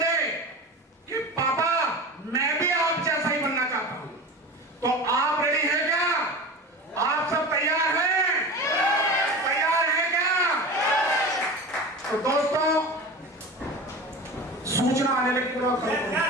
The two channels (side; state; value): both; normal; correlation 0.31